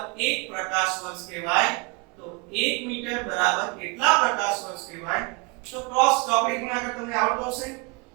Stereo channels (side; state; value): left; quieter; 29.0 dB